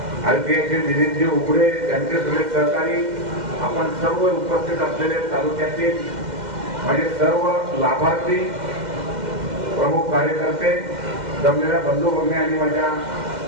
आरपीआयचे दिनेशजी उघडे, त्यांचे सगळे सहकारी, आपण सर्व उपस्थित असलेले तालुक्यातील म्हणजे सर्व लाभार्थी, प्रमुख कार्यकर्ते, जमलेल्या बंधू भगिनी आणि माझ्या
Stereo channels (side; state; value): left; late; 2.1 ms